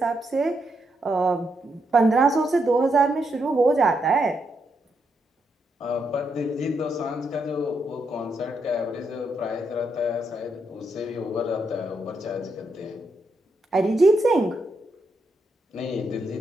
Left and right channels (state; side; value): normal; both; correlation 0.80